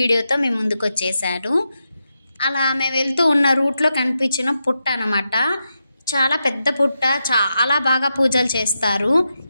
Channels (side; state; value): both; inverted; correlation -0.87